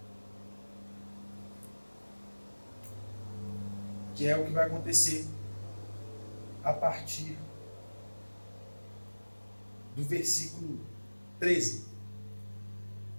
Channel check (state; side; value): inverted; both; correlation -1.00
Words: Que é o que vai acontecer a partir do versículo 13.